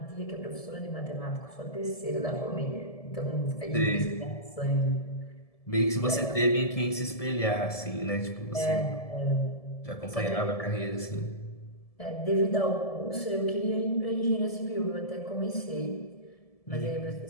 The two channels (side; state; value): right; late; 1.7 ms